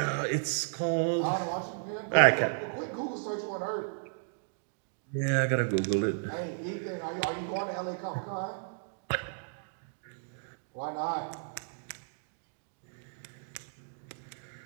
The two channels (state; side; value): silent; left; digital silence